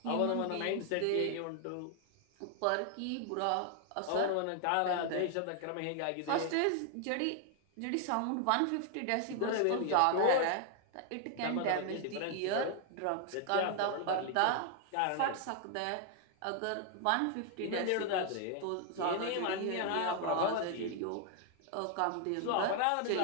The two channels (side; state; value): both; different; correlation 0.00